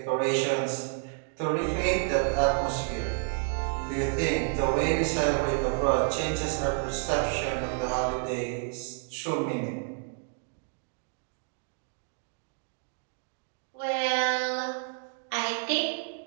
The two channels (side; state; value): left; silent; 58 dB below the other